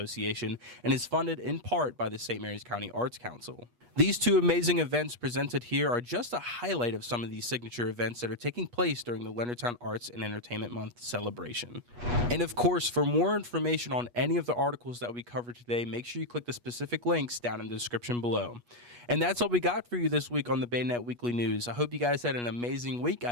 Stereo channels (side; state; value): left; late; 8.3 ms